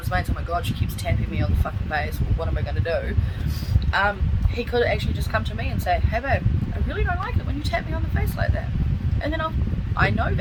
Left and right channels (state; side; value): identical; both; correlation 1.00